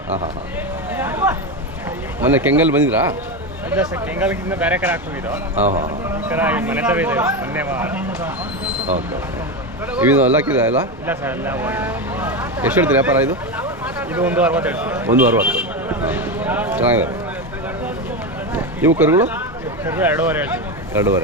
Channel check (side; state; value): both; normal; correlation 0.15